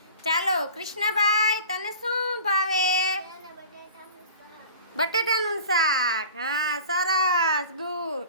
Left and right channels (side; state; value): both; inverted; correlation -0.42